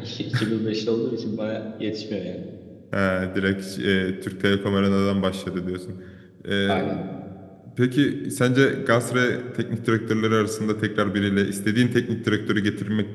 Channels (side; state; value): both; identical; correlation 1.00